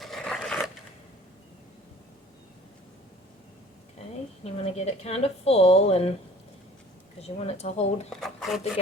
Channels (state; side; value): normal; both; correlation 0.49